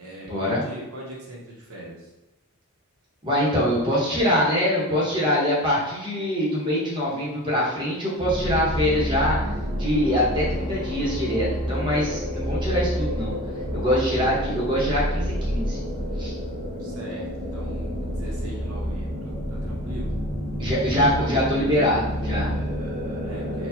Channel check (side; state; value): both; normal; correlation 0.34